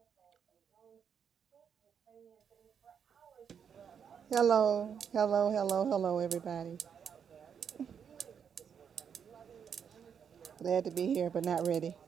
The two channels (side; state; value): left; quieter; 7.5 dB